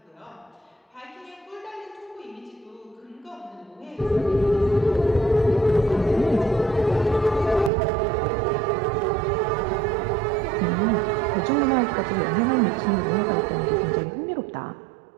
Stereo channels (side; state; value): left; drops out; at 7.7 s